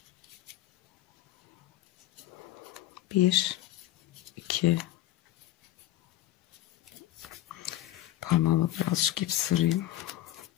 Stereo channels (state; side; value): quieter; right; 14.4 dB